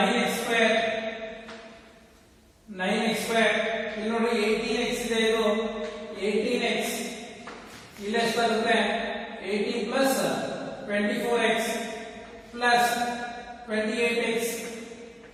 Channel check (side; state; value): both; identical; correlation 1.00